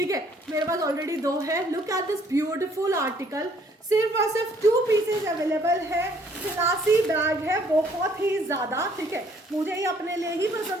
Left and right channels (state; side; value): normal; both; correlation 0.63